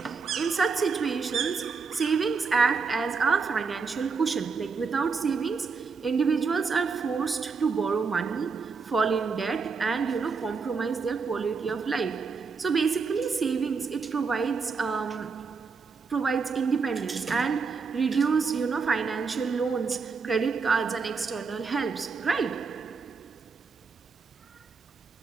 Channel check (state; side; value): quieter; left; 5.1 dB